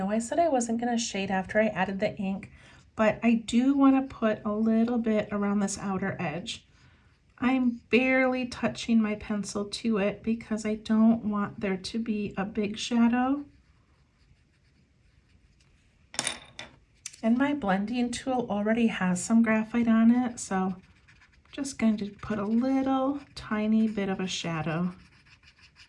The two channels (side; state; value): both; identical; correlation 1.00